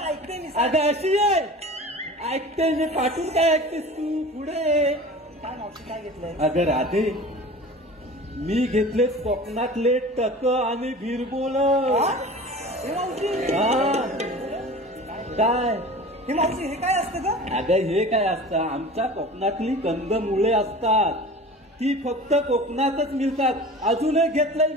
ऐकते मी अगं अशी आहे, ऐकते मी पाठून काय ऐकतेस तू पुढे. काय मावशी काय घेतलंय? अगं राधे, मी घेतले कोकणातले टक आणि भिरबोल. हा? हे मावशी काय हे मावशी हे काय असतं ग? अगं हे काय असतं, आमच्या कोकणातली कंदमुळे असतात, ती फक्त कोकणातच मिळतात. अजूनही घेतलंय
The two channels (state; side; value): normal; both; correlation 0.38